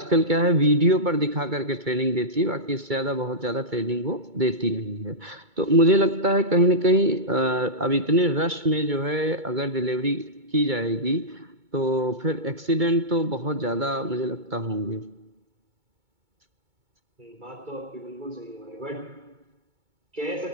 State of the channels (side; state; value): left; late; 2.2 ms